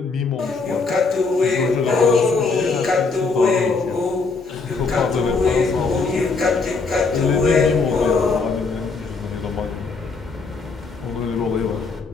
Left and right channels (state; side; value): quieter; right; 4.3 dB